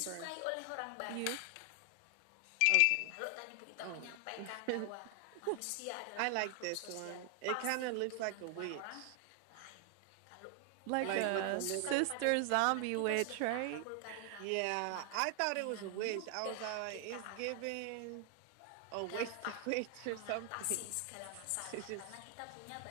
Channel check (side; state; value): both; different; correlation 0.00